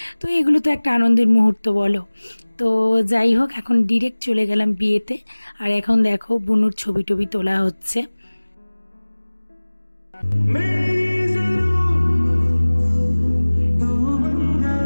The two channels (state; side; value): inverted; both; correlation -1.00